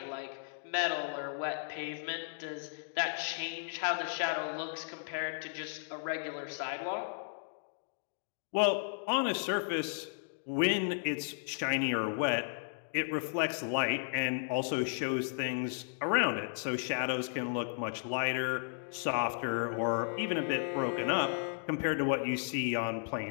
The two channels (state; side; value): silent; right; digital silence